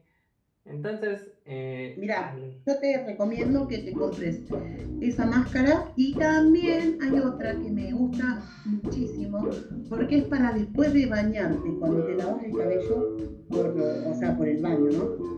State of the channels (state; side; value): identical; both; correlation 1.00